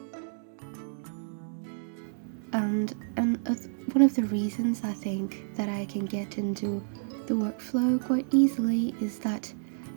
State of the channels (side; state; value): left; silent; 58 dB below the other